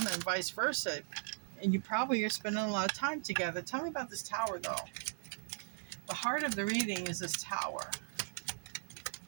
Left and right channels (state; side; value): silent; left; digital silence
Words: and vice versa. And you probably are spending a lot of time together. Tell me about this Tower, though. The heart of the reading is this Tower.